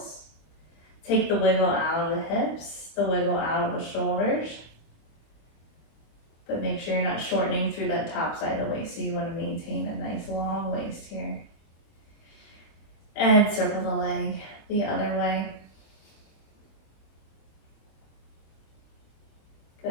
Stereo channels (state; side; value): late; right; 25 ms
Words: Take the wiggle out of the hips, the wiggle out of the shoulders. But make sure you're not shortening through that top side of the waist. So you want to maintain a nice long waist here. And circle the leg the other way.